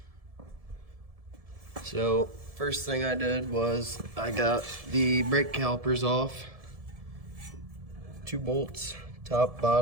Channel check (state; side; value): late; left; 1.7 ms